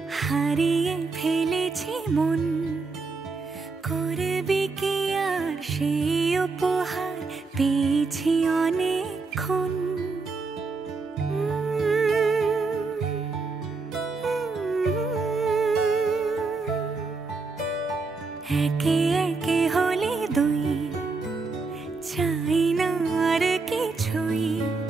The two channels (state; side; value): quieter; left; 4.1 dB